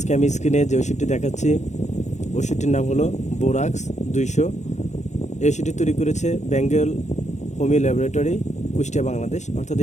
আমি স্ক্রিনে যে ওষুধটি দেখাচ্ছি, ওষুধটির নাম হলো বোরাক্স 200। এই ওষুধটি তৈরি করেছে বেঙ্গল হোমিও ল্যাবরেটরি, কুষ্টিয়া, বাংলাদেশ। অর্থাৎ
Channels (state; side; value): late; right; 0.34 ms